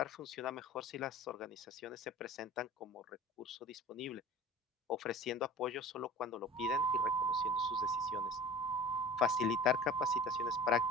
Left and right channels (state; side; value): normal; both; correlation 0.41